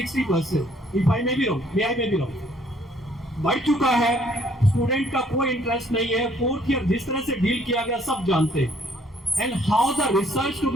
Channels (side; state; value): both; normal; correlation 0.63